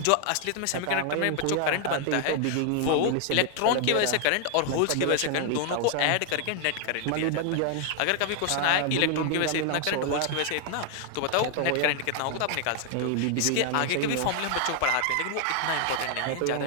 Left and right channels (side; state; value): both; different; correlation 0.00